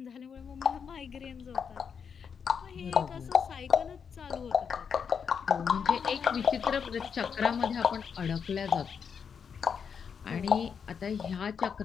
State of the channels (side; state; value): right; quieter; 6.7 dB